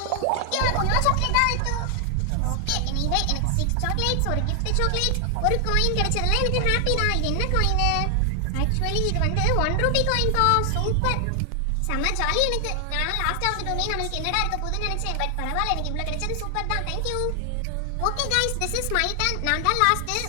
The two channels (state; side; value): different; both; correlation 0.00